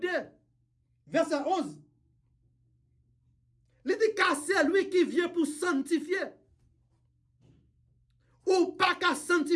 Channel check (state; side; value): identical; both; correlation 1.00